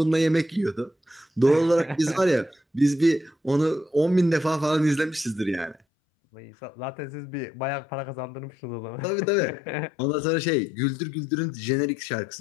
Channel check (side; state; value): right; drops out; at 5.8 s